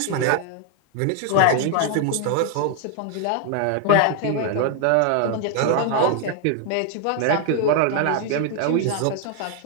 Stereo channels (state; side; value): different; both; correlation 0.00